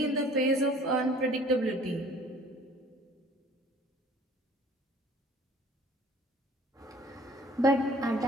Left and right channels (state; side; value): normal; both; correlation 0.51